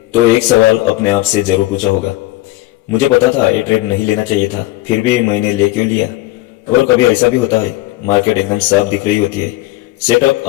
तो एक सवाल अपने आप से जरूर पूछा होगा। मुझे पता था ये ट्रेड नहीं लेना चाहिए था, फिर भी मैंने ले क्यों लिया। और कभी ऐसा भी होता है, मार्केट एकदम साफ दिख रही होती है, सेटअप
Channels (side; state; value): right; quieter; 18.0 dB